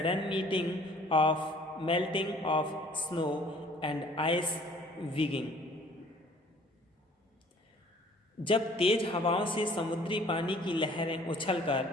meeting of melting of snow and ice wegging, जब तेज हवाओं से समुद्री पानी की लहरें उछलकर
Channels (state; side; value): normal; both; correlation 0.54